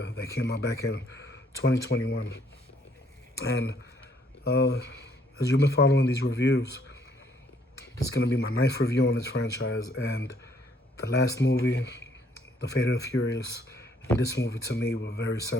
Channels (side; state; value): both; normal; correlation 0.66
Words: that came out back in 2021. And as you've been following these reviews, it's gonna be my ninth review on this franchise. And the last movie, The Fate of the Furious, and this movie to me were very